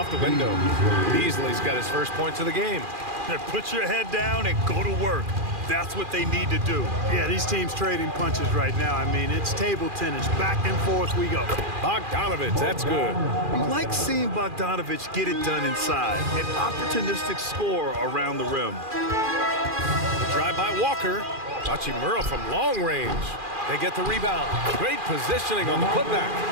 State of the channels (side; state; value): left; late; 2.4 ms